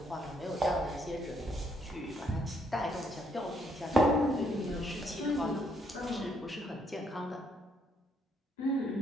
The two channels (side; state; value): both; normal; correlation 0.71